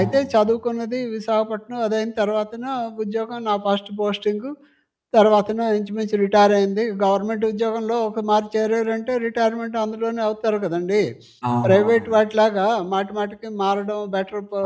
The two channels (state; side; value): identical; both; correlation 1.00